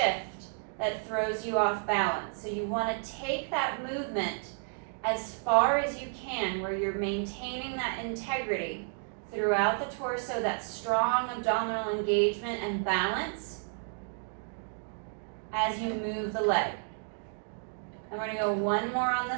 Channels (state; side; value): silent; left; 57 dB below the other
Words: that throws you off balance. So you want to take that movement as far as you can where you're maintaining that integrity throughout the torso, that strong abdominal engagement and balance as you move the leg. I'm going to go one more on